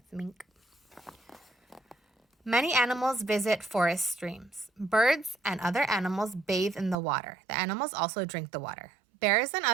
mink. Many animals visit forest streams. Birds and other animals bathe in the water. The animals also drink the water. Bears and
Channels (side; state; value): left; drops out; at 7.0 s